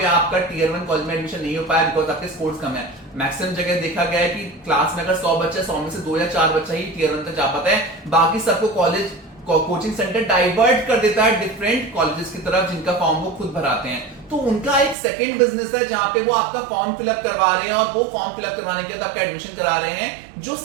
आपका टियर 1 कॉलेज में एडमिशन नहीं हो पाया बिकॉज आपके स्कोर्स कम है। मैक्सिमम जगह देखा गया है कि क्लास में अगर 100 बच्चे 100 में से 2 या 4 बच्चा ही टियर 1 तक जा पाता है, बाकी सबको कॉलेज कोचिंग सेंटर डाइवर्ट कर देता है डिफरेंट कॉलेजेस की तरफ जिनका फॉर्म वो खुद भराते हैं। तो उनका एक सेकंड बिजनेस है जहां पे वो आपका फॉर्म फिलअप करवा रहे हैं और वो फॉर्म फिलअप करवाने के बाद आपका एडमिशन करा रहे हैं, जो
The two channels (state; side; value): drops out; left; at 15.0 s